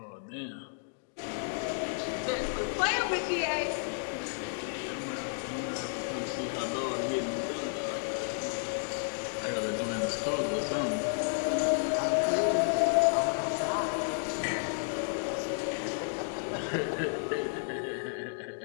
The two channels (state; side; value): silent; right; digital silence